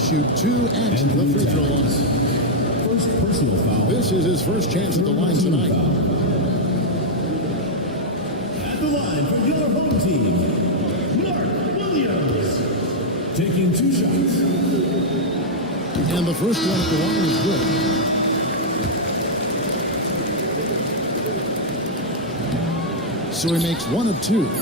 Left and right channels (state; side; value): normal; both; correlation -0.04